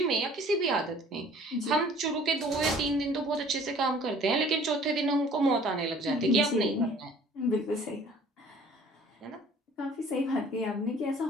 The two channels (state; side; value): normal; both; correlation 0.52